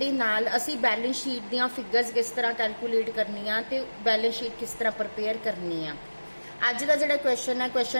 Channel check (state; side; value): inverted; both; correlation -1.00